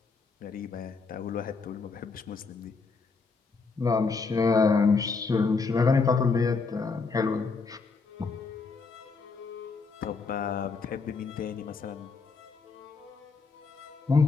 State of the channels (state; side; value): quieter; right; 4.5 dB